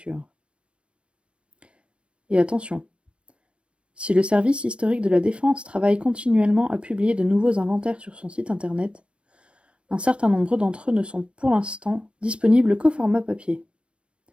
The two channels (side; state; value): left; late; 0.059 ms